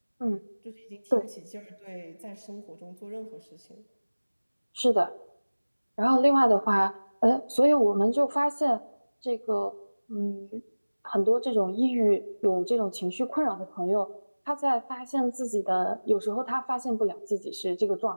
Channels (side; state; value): both; inverted; correlation -1.00